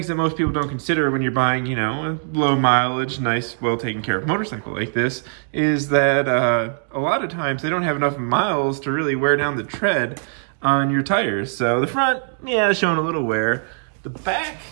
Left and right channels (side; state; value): left; silent; digital silence